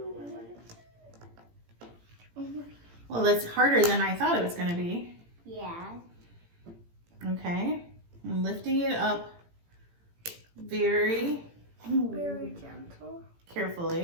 Well, that's harder than I thought it was going to be. Yeah. Okay, I'm lifting it up very gentle.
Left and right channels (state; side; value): late; left; 18 ms